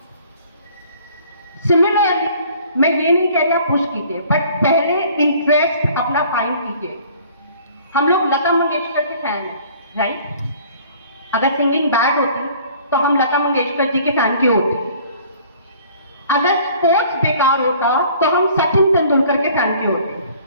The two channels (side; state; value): both; inverted; correlation -0.53